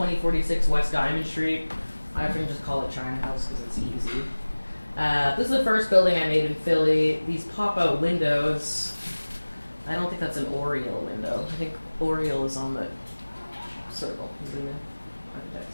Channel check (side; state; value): both; inverted; correlation -1.00